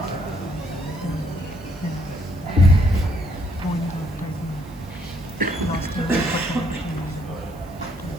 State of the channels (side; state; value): right; noise; hiss, 26 dB below the sound